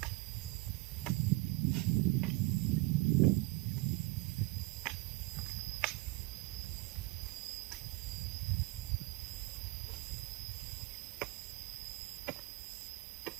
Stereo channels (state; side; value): quieter; left; 21.9 dB